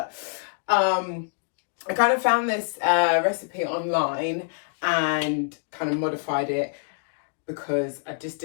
I kind of found this recipe online and kind of modified it because I just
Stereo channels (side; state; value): right; silent; digital silence